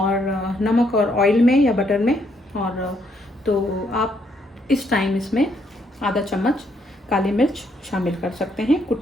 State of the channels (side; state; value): both; normal; correlation 0.73